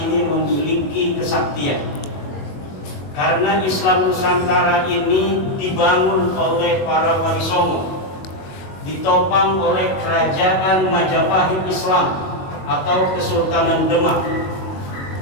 memiliki kesaktian? Karena Islam Nusantara ini dibangun oleh para wali songo, ditopang oleh kerajaan Majapahit Islam atau Kesultanan Demak.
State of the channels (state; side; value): late; right; 21 ms